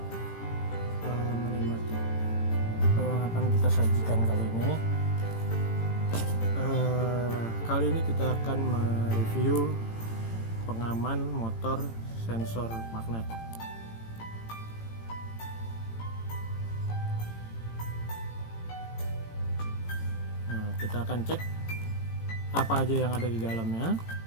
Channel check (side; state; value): right; late; 18 ms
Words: menikmati apa yang akan kita sajikan kali ini. Kali ini kita akan mereview pengaman motor sensor magnet. Nah, kita akan cek apa aja yang ada di dalamnya.